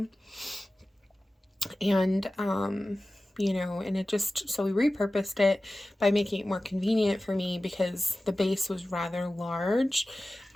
And, you know, and it just, so we repurposed it by making it more convenient for me because the base was rather large.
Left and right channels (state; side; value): normal; both; correlation 0.96